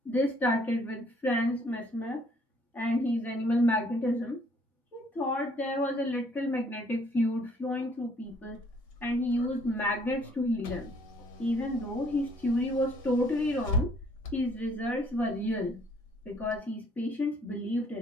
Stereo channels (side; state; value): both; normal; correlation 0.63